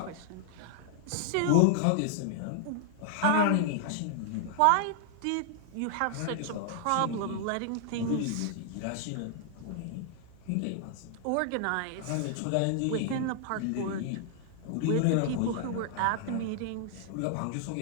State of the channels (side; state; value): both; different; correlation -0.01